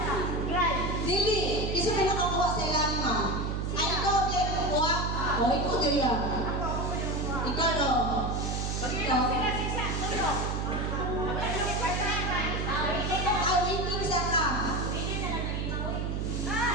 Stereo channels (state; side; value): noise; right; hum, 1 dB below the sound